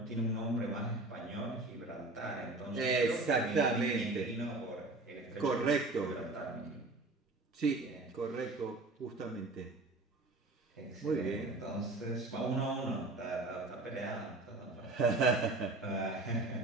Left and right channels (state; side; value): quieter; left; 3.0 dB